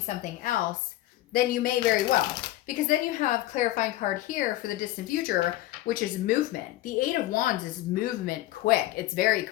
something else, then you may very well. Because then you have clarifying card here for the distant future, which is movement. The 8 of Wands is movement quick. It's very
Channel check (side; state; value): right; quieter; 15.9 dB